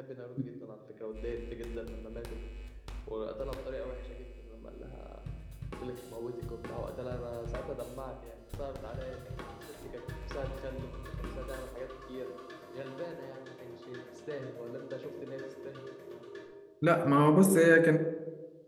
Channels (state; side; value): identical; both; correlation 1.00